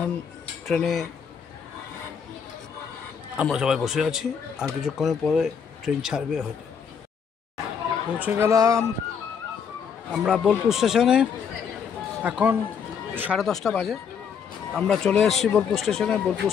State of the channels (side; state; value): right; quieter; 7.0 dB